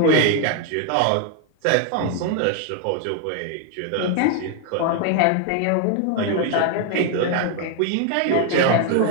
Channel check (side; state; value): both; different; correlation 0.01